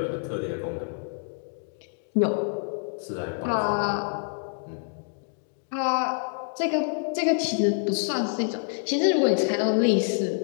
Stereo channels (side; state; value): right; silent; 60 dB below the other